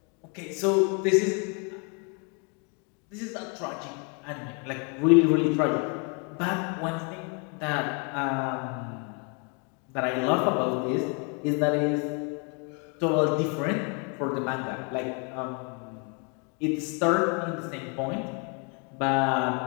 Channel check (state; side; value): quieter; right; 36.2 dB